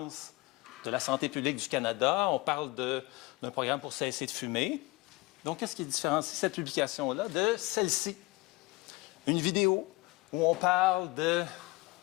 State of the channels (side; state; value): right; quieter; 22.2 dB